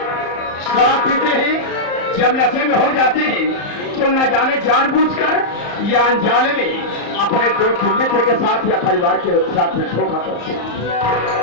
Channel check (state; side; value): late; right; 34 ms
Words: शराब पीते हैं, जब नशे में हो जाते हैं तो न जाने जानबूझकर या अनजाने में अपने दोस्त मित्र के साथ या परिवार के साथ में धोखा करते हैं।